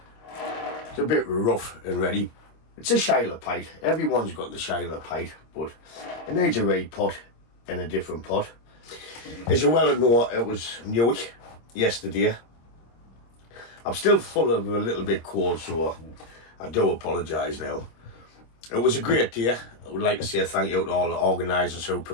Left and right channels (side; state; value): right; late; 26 ms